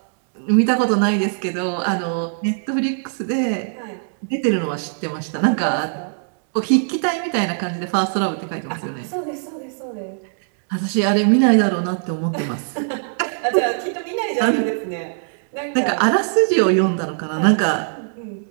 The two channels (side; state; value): left; silent; digital silence